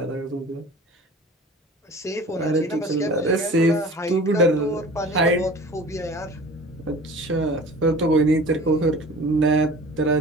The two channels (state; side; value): normal; both; correlation 0.42